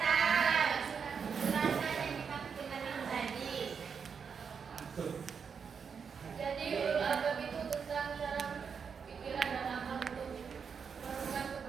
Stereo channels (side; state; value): left; quieter; 6.3 dB